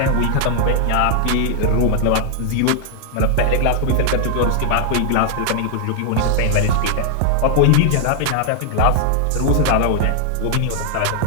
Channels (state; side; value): different; both; correlation 0.00